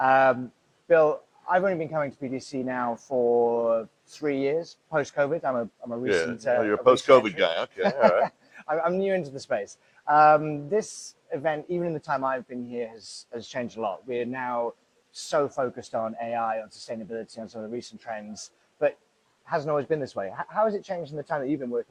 Bill, I've only been coming to PTC now for 3 years, post-COVID. I'm a recent. Yeah. You're a post-COVID guy. Okay. All right. I'm new into the space. This event, even in the time I've been here, has changed a lot. We're now so focused on AI, on sustainability, on some of the recent trends, but hasn't always been this way. How has it changed in the time that you've been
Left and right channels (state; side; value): identical; both; correlation 1.00